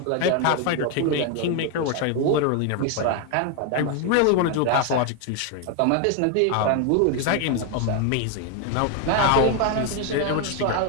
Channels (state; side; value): different; both; correlation 0.01